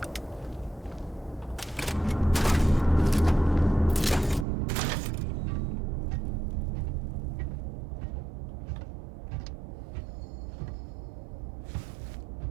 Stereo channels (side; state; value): left; drops out; at 4.5 s